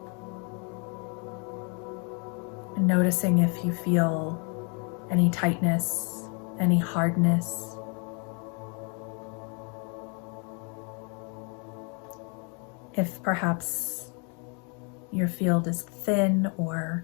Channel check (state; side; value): quieter; right; 36.3 dB